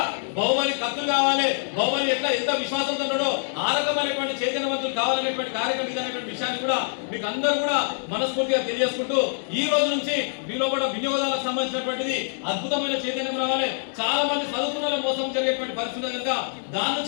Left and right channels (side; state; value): right; silent; digital silence